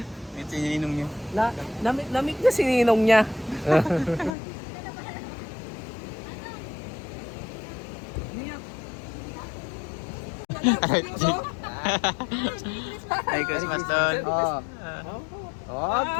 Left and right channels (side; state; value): right; drops out; at 4.3 s